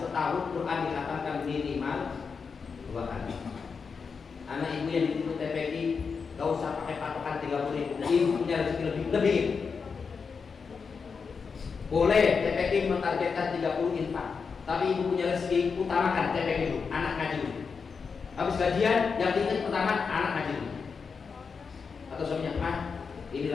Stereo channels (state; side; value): quieter; right; 5.5 dB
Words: setahun Quran dikatakan minimal 2 kali. Anak ibu yang dituntut TPQ gak usah pakai patokan 30.000. Ibu punya rezeki lebih. Boleh TPQ mentargetkan 30 infak, tapi ibu punya rezeki, utamakan TPQ itu, anak ngaji. Habis gajian yang diingat utama anak ngaji. Atau suaminya, mah ini